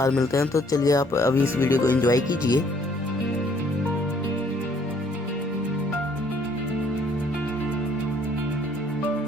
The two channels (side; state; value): both; normal; correlation 0.63